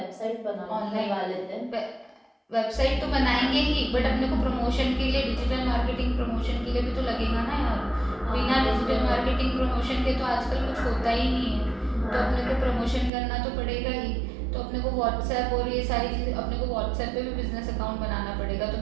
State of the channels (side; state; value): left; drops out; at 13.1 s